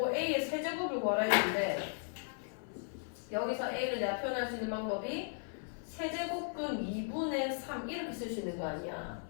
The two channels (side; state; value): right; silent; 53 dB below the other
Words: a의 세제곱을 구하라 했는데 여기서 a를 내가 표현할 수 있는 방법이 세제곱근 2분의 3 이렇게 쓸 수 있는 거 아니야.